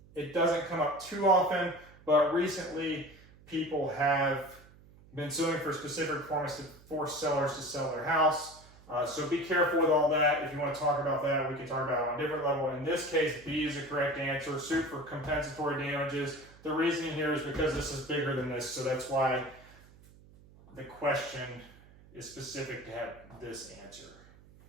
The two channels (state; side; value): noise; right; hum, 24 dB below the sound